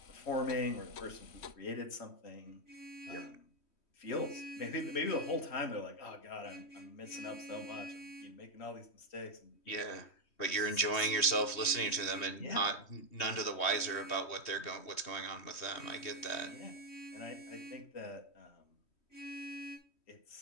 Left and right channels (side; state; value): right; late; 3.1 ms